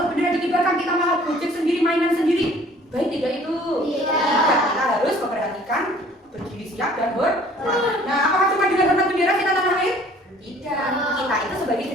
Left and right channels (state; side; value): normal; both; correlation 0.54